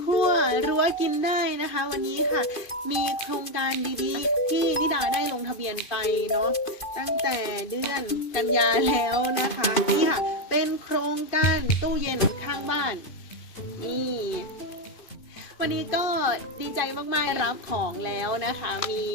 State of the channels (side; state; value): right; late; 2.5 ms